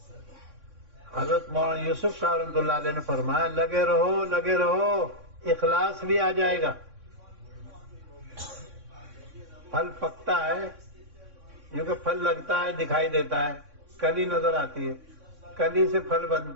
حضرت مولانا یوسف صاحب رحمۃ اللہ علیہ نے فرمایا لگے رہو، لگے رہو، اخلاص بھی آ جائے گا. پھل پکتا ہے، کیونکہ پھل لگتا ہے، دکھائی دیتا ہے، کلی نظر آتی ہے، کلی سے پھل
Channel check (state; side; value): late; left; 3.6 ms